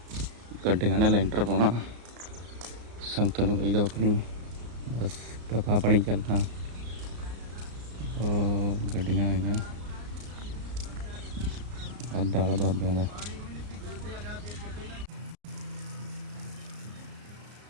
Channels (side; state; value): left; late; 34 ms